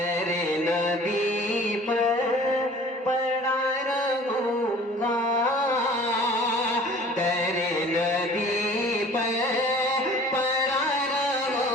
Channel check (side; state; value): both; normal; correlation 0.48